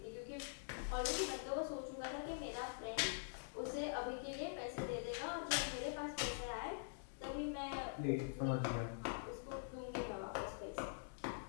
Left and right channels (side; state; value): right; silent; digital silence